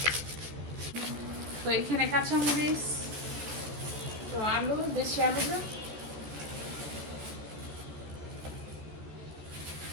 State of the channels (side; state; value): left; late; 14 ms